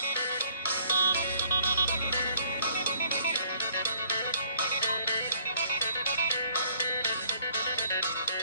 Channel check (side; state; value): both; inverted; correlation -0.59